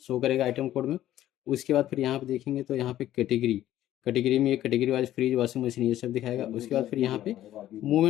शो करेगा आइटम कोड में। उसके बाद फिर यहाँ पे देखेंगे तो यहाँ पे कैटेगरी में एक category wise fridge washing machine ये सब दिखाएगा। उसके बाद फिर यहाँ पे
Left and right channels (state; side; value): quieter; right; 13.1 dB